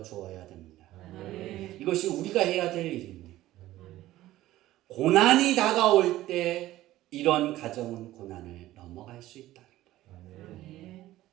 됩니다. 이것이 우리가 해야 될 일입니다. 고난이 다가올 때 이런 가정은 고난을 넘어갈 수 있다는 거예요.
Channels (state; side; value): quieter; left; 15.4 dB